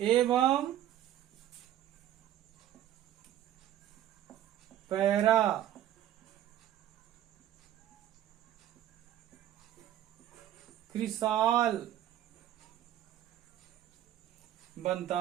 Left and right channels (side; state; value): left; quieter; 12.0 dB